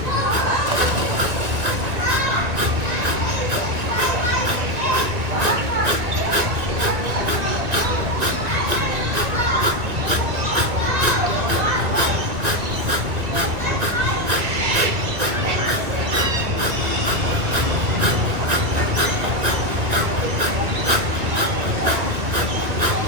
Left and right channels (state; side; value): late; left; 2.1 ms